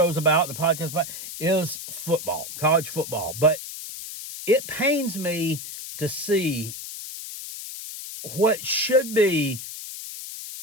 about, the podcast about, is football, college football. But it pains me to see what should be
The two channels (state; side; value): noise; left; hiss, 10 dB below the sound